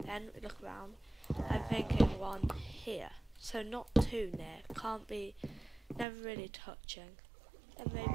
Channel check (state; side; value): drops out; left; at 6.1 s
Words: Then we look around. I'm thinking one here, so not too near, can't be, never really touching. And maybe